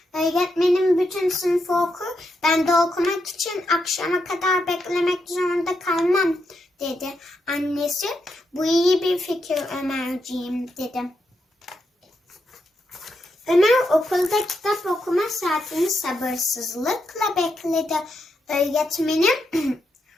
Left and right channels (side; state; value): both; normal; correlation 0.83